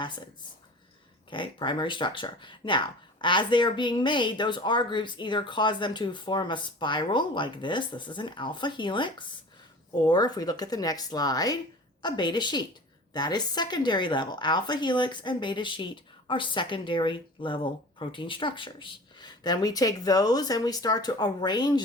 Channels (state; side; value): normal; both; correlation 0.40